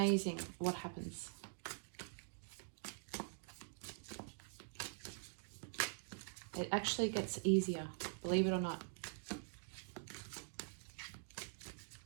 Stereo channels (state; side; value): silent; left; digital silence